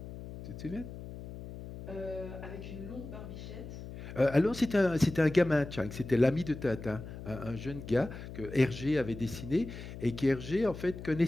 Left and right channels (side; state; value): left; noise; hum, 11 dB below the sound